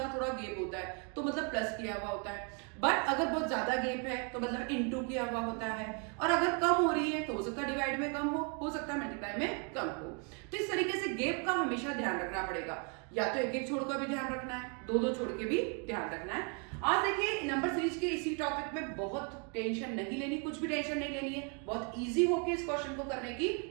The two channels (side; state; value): left; quieter; 37.4 dB